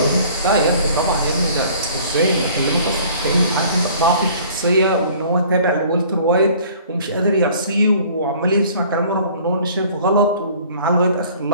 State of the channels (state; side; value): inverted; both; correlation -0.52